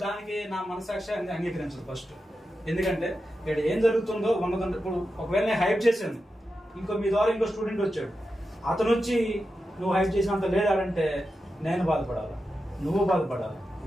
దానికి నా మనసాక్షి అంగీకరించదు ఫస్ట్. ఎందుకంటే ఇక్కడ ఏం జరుగుతుందో ఉన్నదంటే ఇప్పుడు ఒకవేళ నేను హైప్ చేశాను, ఇంకో మీ ద్వారా ఇంకో స్టూడెంట్ వచ్చాడు, అతను వచ్చి నువ్వు హైప్ చేసినంత లేదంటే నేను బాధపడాలి, నువ్వు బాధపడాలి.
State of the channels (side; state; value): both; normal; correlation 0.90